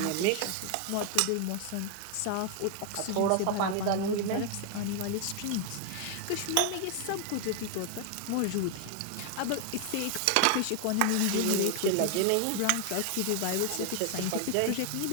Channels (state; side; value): different; both; correlation 0.00